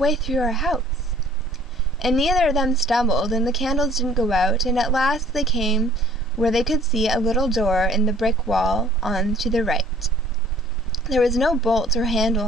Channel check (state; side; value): normal; both; correlation 0.54